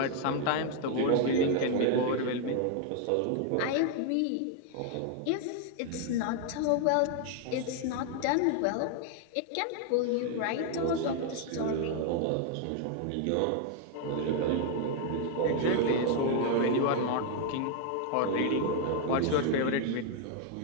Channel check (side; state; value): both; different; correlation 0.00